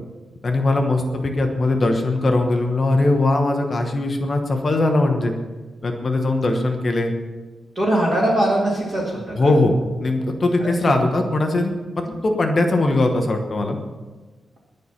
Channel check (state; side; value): normal; both; correlation 0.89